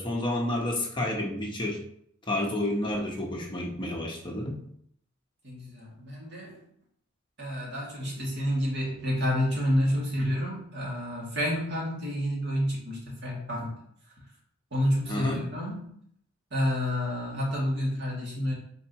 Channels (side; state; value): both; normal; correlation 0.73